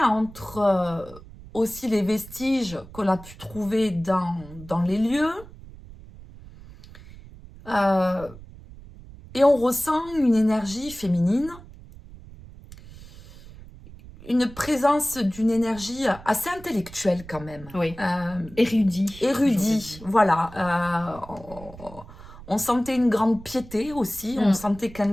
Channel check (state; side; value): noise; right; rumble, 18 dB below the sound